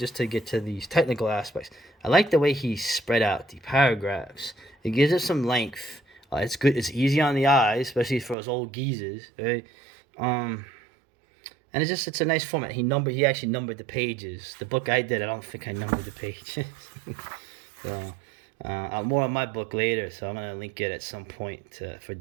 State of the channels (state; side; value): drops out; left; at 8.3 s